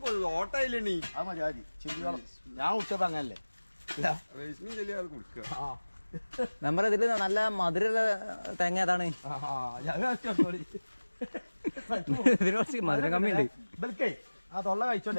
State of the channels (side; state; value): both; inverted; correlation -1.00